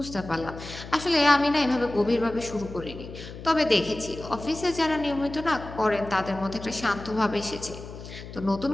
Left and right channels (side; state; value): left; noise; hum, 13 dB below the sound